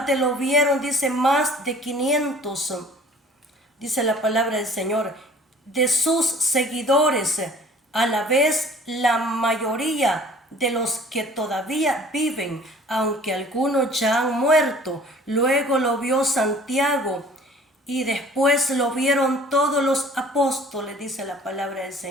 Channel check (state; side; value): normal; both; correlation 0.50